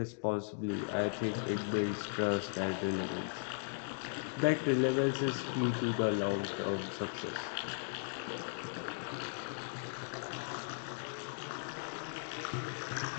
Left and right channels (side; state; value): right; silent; digital silence